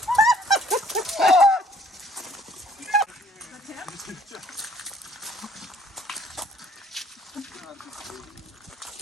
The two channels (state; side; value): normal; both; correlation 0.60